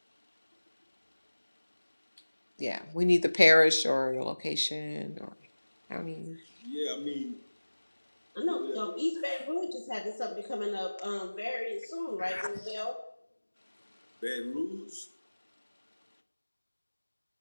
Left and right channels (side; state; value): both; inverted; correlation -1.00